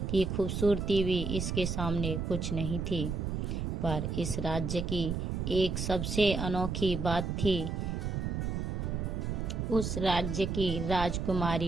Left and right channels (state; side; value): noise; right; rumble, 2 dB below the sound